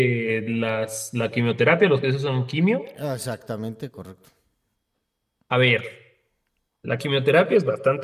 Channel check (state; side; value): identical; both; correlation 1.00